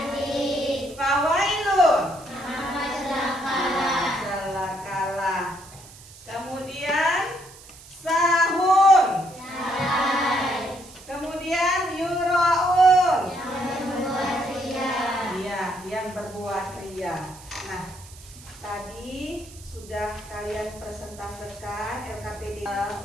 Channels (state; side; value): noise; right; hiss, 20 dB below the sound